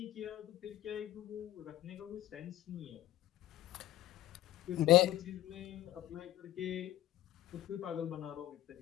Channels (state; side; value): quieter; right; 14.5 dB